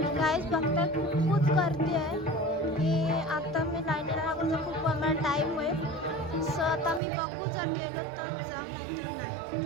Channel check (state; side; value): drops out; left; at 7.0 s